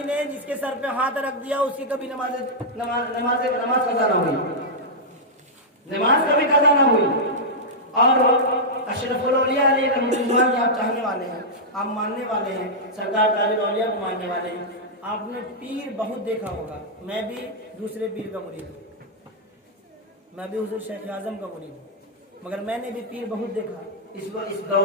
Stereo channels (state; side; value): normal; both; correlation -0.08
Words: نے جس کے سر پہ ہاتھ رکھ دیا اس کی کبھی نماز قضا نہ ہوئی، نماز کبھی قضا نہ ہوئی۔ اور اشرف الاولیاء علیہ رحمۃ اللہ آپ چاہنے والے ہیں، آپ ماننے والے ہیں، سرکار تاج الاولیاء کو ماننے والے ہیں، آپ نے پیر بہت دیکھا ہوگا۔ میں بھی دوسرے پیر کا مرید ہوں، میں بھی حضور شیخ اعظم کا مرید ہوں، مگر میں نے بھی پیر بہت دیکھا اس